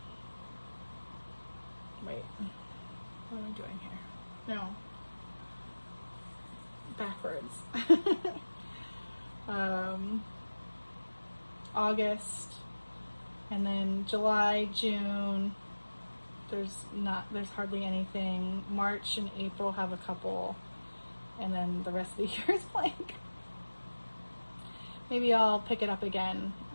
Wait, what am I doing here? No. Backwards. August, and then July, June, there's hardly anything. March and April have a couple, and then the rest of the year is blank. Maybe I'll pick it up again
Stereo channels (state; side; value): inverted; both; correlation -1.00